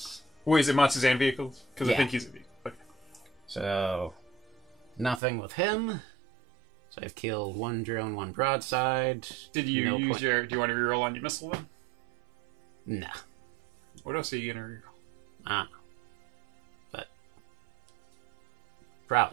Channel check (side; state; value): left; drops out; at 5.2 s